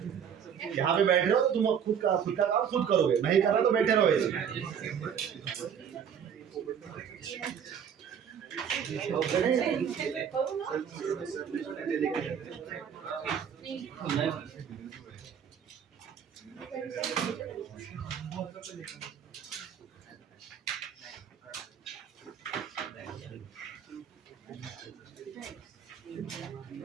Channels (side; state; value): left; quieter; 8.0 dB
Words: यहाँ पे बैठ रहे हो तो तुम खुद का काम खुद करोगे. नहीं कर रहे तो बैठे रहो ऐसे.